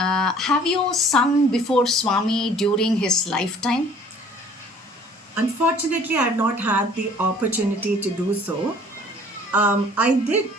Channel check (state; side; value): normal; both; correlation 0.53